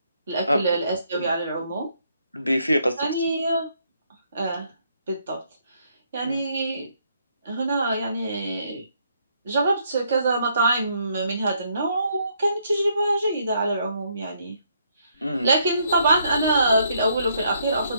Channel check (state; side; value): inverted; both; correlation -0.71